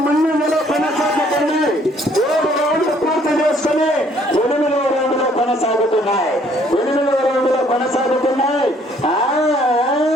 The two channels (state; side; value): normal; both; correlation 0.62